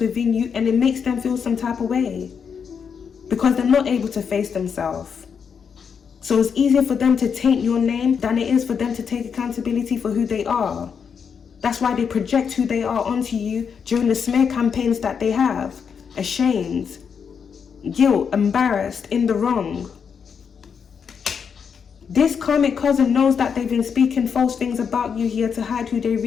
within you, and it makes them feel some type of way. Because they're not able to face themselves. So it's easier for them to taint your name than it is for them to take accountability for who they are. That's why they project who they are onto you during the smear campaigns that they have. Ashamed, guilt, embarrassed, in the wrong. This karmic cousin knows that they've been speaking false things about you here to hide who they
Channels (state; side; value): quieter; right; 6.7 dB